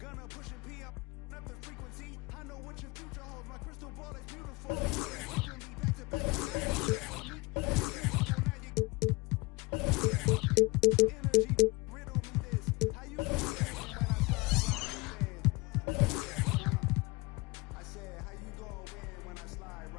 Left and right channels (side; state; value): right; quieter; 25.2 dB